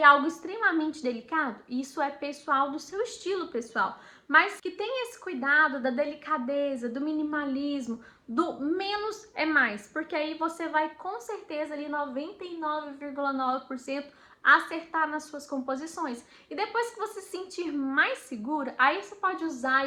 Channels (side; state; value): both; identical; correlation 1.00